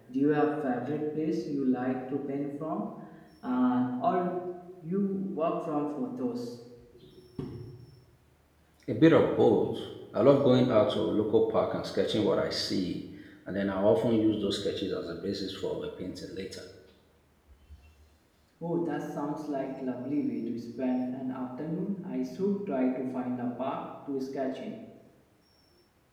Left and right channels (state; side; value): identical; both; correlation 1.00